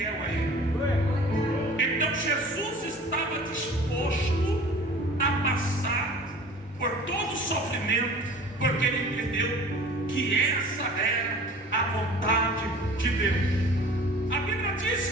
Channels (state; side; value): normal; both; correlation 0.45